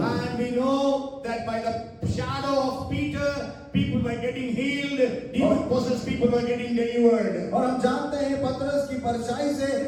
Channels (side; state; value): both; identical; correlation 1.00